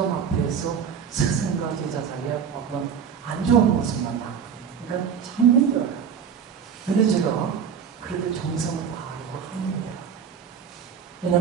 앞에서 스승과 제자 사이에 어떤 안 좋은 모습만 남거든요. 그러니까 참 힘들어요. 근데 제가 그래도 정성을 다하려고 합니다.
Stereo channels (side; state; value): left; quieter; 7.3 dB